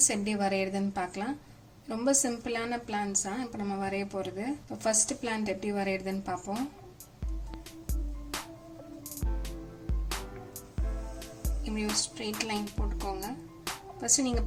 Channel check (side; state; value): both; identical; correlation 1.00